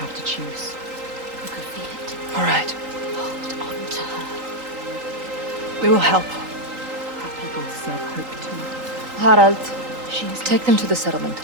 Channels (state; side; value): late; left; 3.9 ms